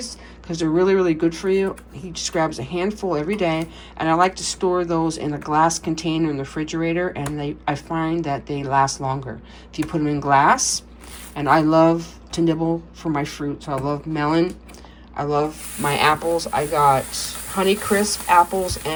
because they're really, really good for you. He just grabs a handful every day, and I like to store those in a glass container in the refrigerator, and I find that they last longer if you put them in glass. And I love to nibble for my fruits. I love melon. I love my apples. I got Honeycrisp apples,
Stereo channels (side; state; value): both; identical; correlation 1.00